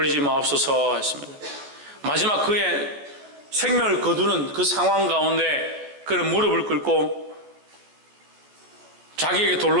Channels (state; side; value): late; left; 14 ms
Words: 마옵소서 했습니다. 마지막 그의 생명을 거두는 그 상황 가운데 그는 무릎을 꿇고 자기에게